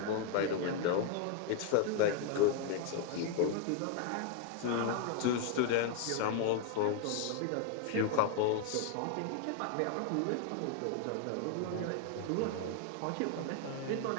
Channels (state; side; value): different; both; correlation 0.00